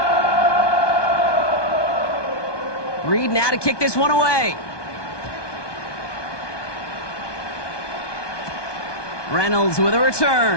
Reed now to kick this one away. Reynolds with a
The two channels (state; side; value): late; right; 1.2 ms